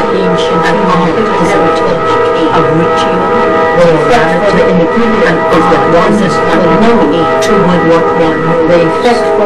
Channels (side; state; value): both; identical; correlation 1.00